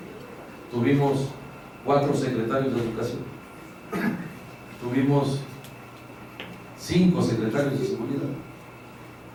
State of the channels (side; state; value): both; identical; correlation 1.00